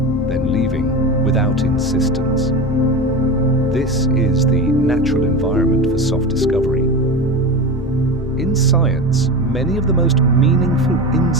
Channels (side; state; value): both; normal; correlation 0.25